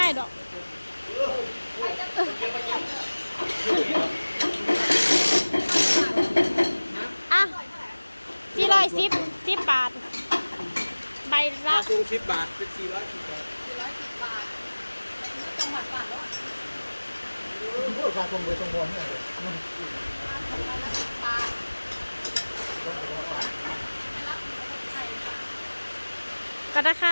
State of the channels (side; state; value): both; inverted; correlation -1.00